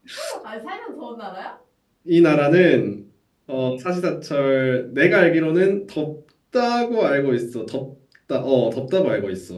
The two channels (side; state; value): both; identical; correlation 1.00